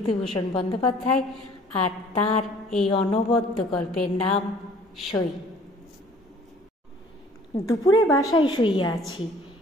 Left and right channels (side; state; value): both; normal; correlation 0.54